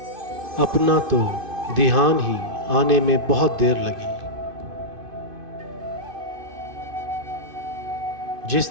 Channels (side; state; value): left; late; 2.6 ms